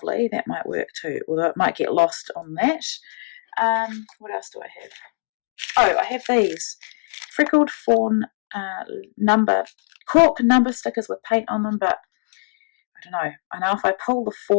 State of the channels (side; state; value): right; silent; digital silence